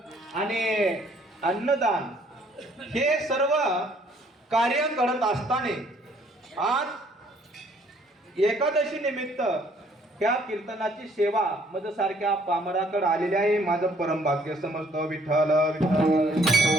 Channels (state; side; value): normal; both; correlation 0.62